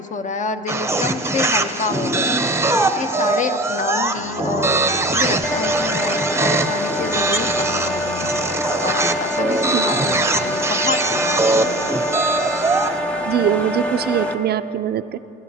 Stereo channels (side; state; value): both; normal; correlation 0.37